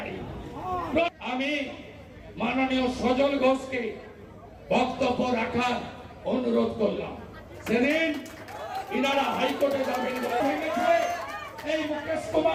আমি মাননীয় সজল ঘোষকে বক্তব্য রাখার অনুরোধ করলাম। সেদিন ইনারা হাইকোর্টে যাবেন এই মুকেশ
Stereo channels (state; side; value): identical; both; correlation 1.00